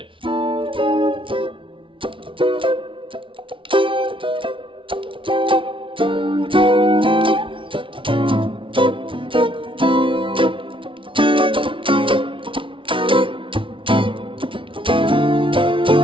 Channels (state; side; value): late; left; 0.25 ms